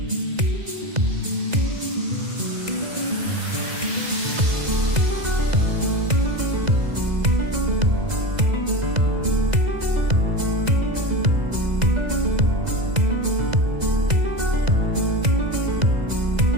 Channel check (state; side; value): late; left; 2.0 ms